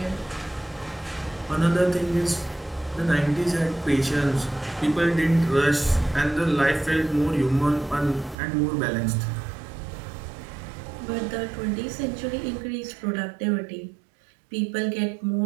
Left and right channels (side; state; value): left; drops out; at 8.3 s